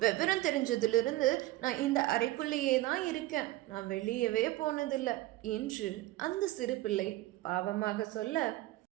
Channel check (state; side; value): quieter; left; 17.0 dB